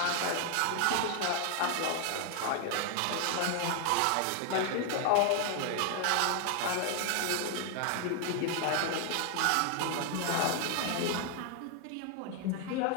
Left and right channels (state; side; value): different; both; correlation 0.00